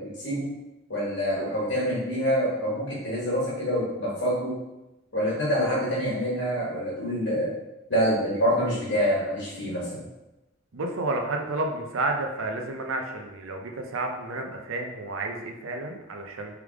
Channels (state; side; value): normal; both; correlation 0.11